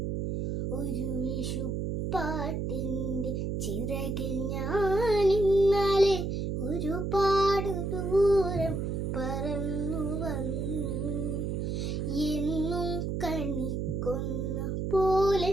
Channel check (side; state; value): right; noise; hum, 1 dB below the sound